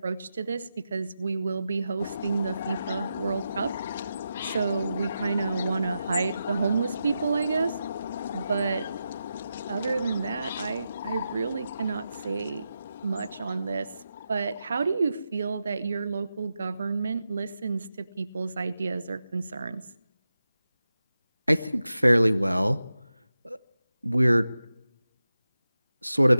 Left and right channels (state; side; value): inverted; both; correlation -0.90